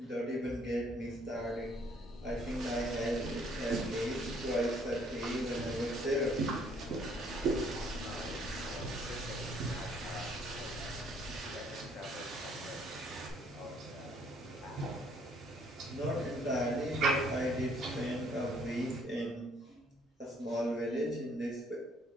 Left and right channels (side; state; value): both; normal; correlation 0.64